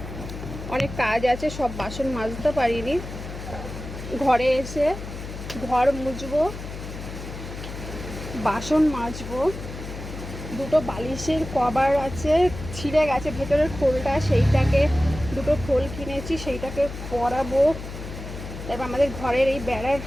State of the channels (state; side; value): noise; left; hum, 10 dB below the sound